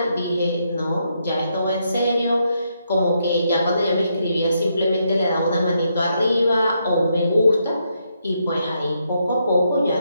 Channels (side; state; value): both; inverted; correlation -0.78